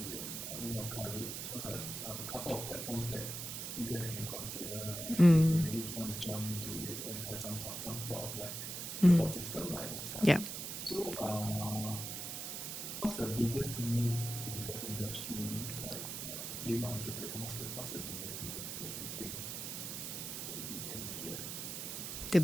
and Women of Courage. Those are a couple of platforms that you guys can consider if you really want to jump into it and have some sort of like support system like at the start. Yeah. So what's the biggest myth in the industry, like being an entrepreneur? What's the biggest myth that you think that you can address? The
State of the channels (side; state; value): right; noise; hiss, 5 dB below the sound